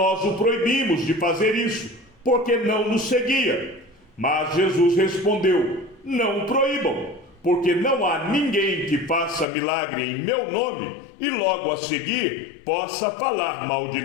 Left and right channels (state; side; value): drops out; right; at 9.5 s